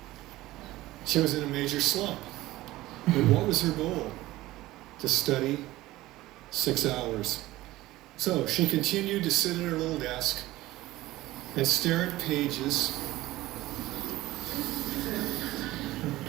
she was in a major slump. But what was her goal? To study 6 hours. So she continued to sit at her little desk and stare at pages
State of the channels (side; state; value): left; quieter; 17.3 dB